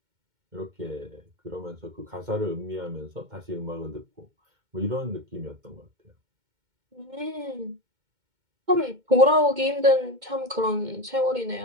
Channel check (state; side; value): late; left; 2.2 ms